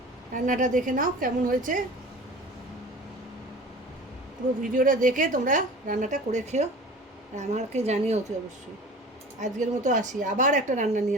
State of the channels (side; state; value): both; normal; correlation 0.40